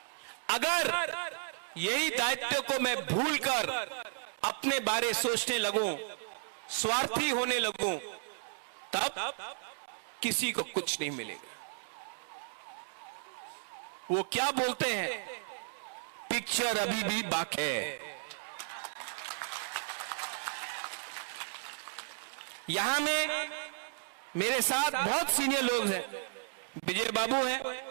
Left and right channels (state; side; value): silent; left; digital silence